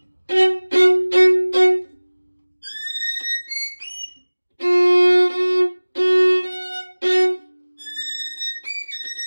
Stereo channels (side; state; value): both; inverted; correlation -1.00